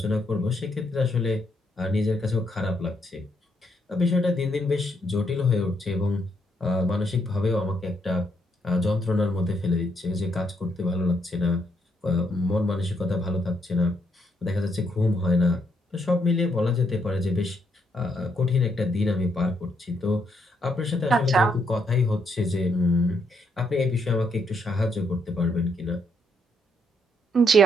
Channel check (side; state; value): both; normal; correlation 0.75